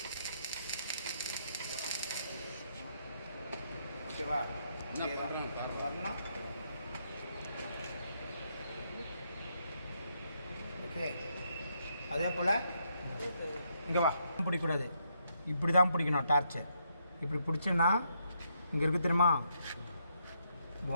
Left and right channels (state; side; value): inverted; both; correlation -0.76